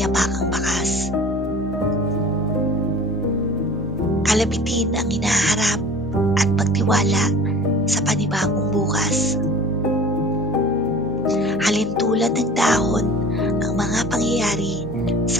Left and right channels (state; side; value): normal; both; correlation 0.43